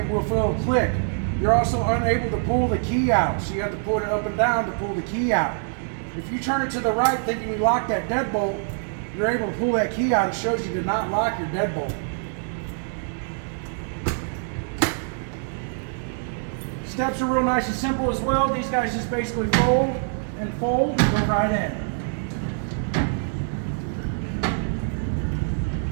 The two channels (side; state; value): left; silent; 60 dB below the other